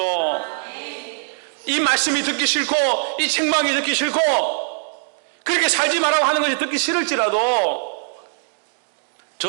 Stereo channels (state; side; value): silent; left; digital silence